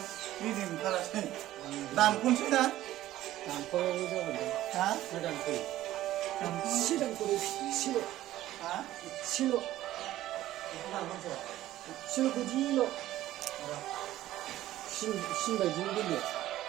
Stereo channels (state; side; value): quieter; left; 14.5 dB